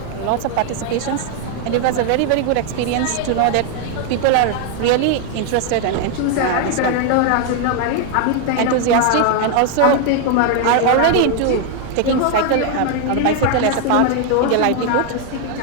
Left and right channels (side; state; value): both; different; correlation 0.00